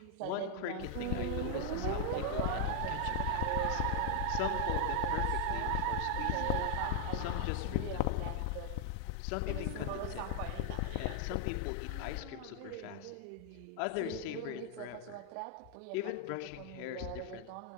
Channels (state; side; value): different; both; correlation 0.00